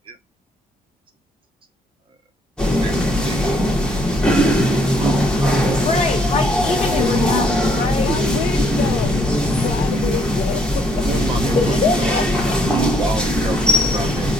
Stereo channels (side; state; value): both; normal; correlation 0.68